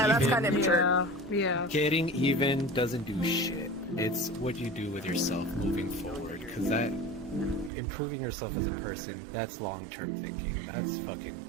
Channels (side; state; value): left; drops out; at 7.7 s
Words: even- kind of immature. Yeah. Getting even doesn't do shit. It's what you do with yourself moving forward, because that improving yourself as a person, that's long-term thinking. That's fucking